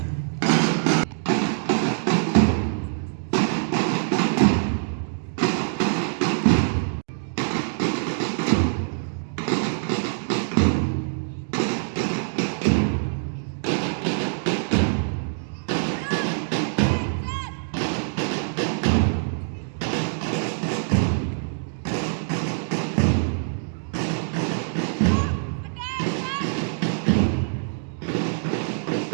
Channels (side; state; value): left; silent; digital silence